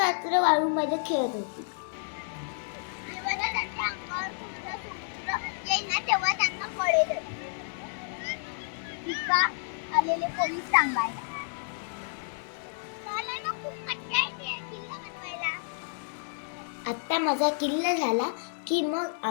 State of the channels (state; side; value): silent; right; digital silence